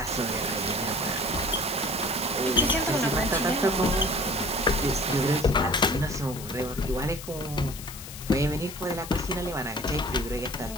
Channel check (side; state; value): left; noise; hiss, 12 dB below the sound